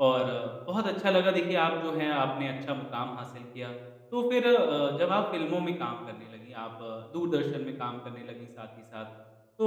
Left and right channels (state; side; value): identical; both; correlation 1.00